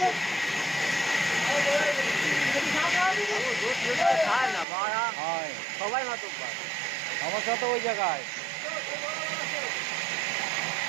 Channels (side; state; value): left; drops out; at 4.7 s